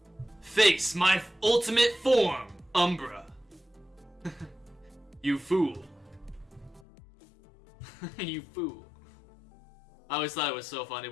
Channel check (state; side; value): drops out; right; at 6.8 s